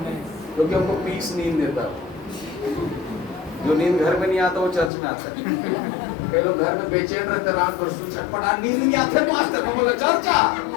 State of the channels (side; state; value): right; drops out; at 4.9 s